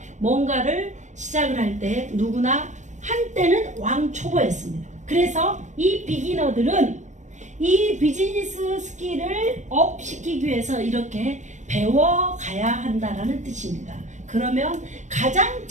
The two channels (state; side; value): late; left; 0.35 ms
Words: 때 누구나 한때는 왕초보였습니다. 그래서 이 비기너들은 이 비즈니스 스킬을 업시키기 위해서 이렇게 배워가야 한다라는 뜻입니다. 그러면 가장